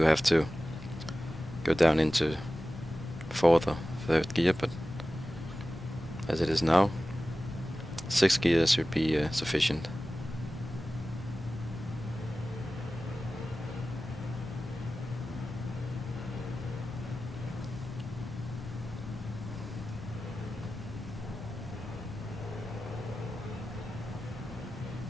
have to go down into 4th or 3rd gear, but as it is now, 6th gear should be sufficient.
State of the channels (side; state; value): both; normal; correlation 0.95